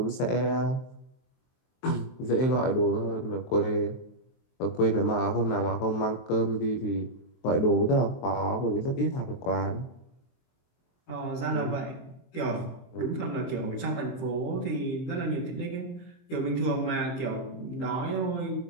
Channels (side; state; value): right; late; 23 ms